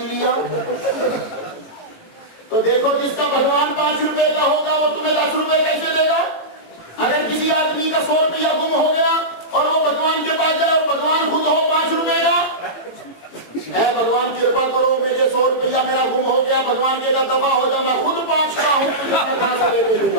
لیا۔ تو دیکھو جس کا بھگوان 5 روپے کا ہوگا وہ تمہیں 10 روپے کیسے دے گا؟ اگر کسی آدمی کا 100 روپیہ گم ہو گیا اور وہ بھگوان کے پاس جائے اور بھگوان خود ہو 5 روپے کا، اے بھگوان کرپا کرو میرے 100 روپیہ میرا گم ہو گیا، بھگوان کے دفعہ ہو جا، میں خود 5 کا ہوں، تجھے کہاں سے لے کے دوں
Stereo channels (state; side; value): late; right; 18 ms